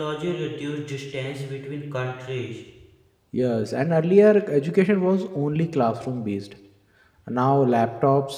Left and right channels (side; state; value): both; identical; correlation 1.00